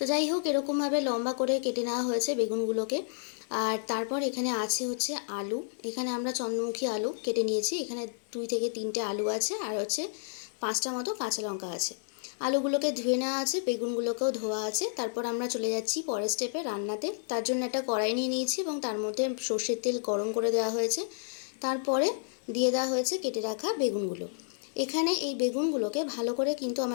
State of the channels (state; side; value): silent; right; digital silence